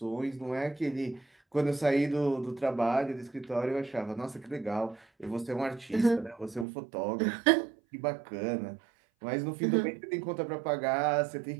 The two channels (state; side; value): drops out; left; at 6.7 s